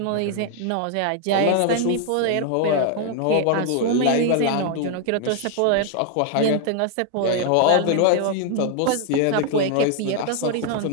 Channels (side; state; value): both; different; correlation 0.00